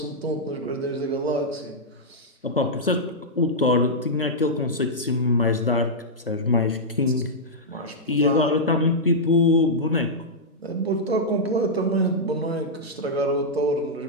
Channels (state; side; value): normal; both; correlation -0.08